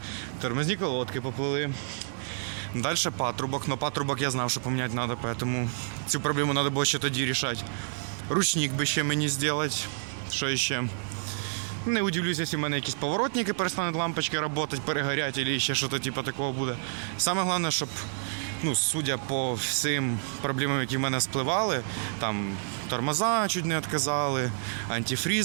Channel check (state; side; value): silent; left; digital silence